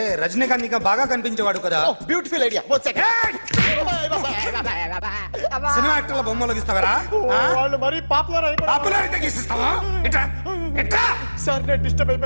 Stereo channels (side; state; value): both; inverted; correlation -1.00